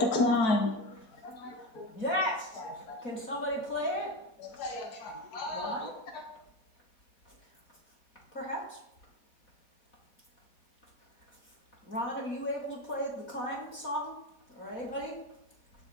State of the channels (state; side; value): late; right; 4.1 ms